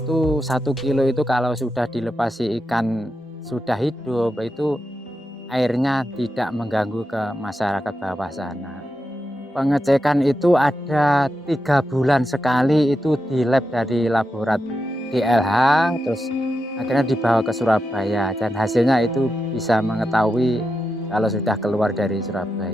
1 kilo itu kalau sudah dilepasi ikan sudah hidup, itu airnya tidak mengganggu ke masyarakat bawah sana. Pengecekan itu ada 3 bulan sekali, itu di lab dari laborat DLH, terus akhirnya dibawa ke Surabaya dan hasilnya itu bisa mengetahui kalau sudah keluar dari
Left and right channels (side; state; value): both; normal; correlation 0.88